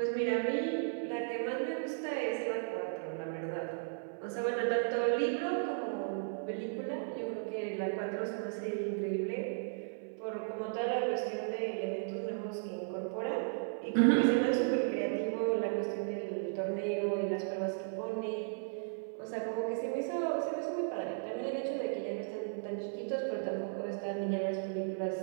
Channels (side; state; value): left; silent; 54 dB below the other